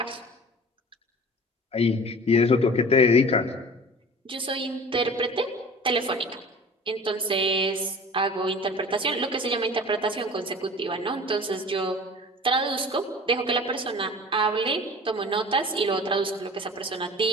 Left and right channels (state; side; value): normal; both; correlation 0.41